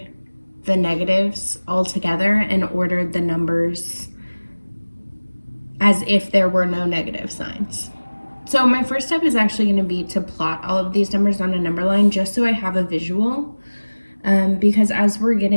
the negatives altogether and ordered the numbers as if there were no negative signs. So my first step is actually going to be to plot all of these numbers on a number line just so I have a visual, because as we're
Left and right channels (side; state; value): both; inverted; correlation -1.00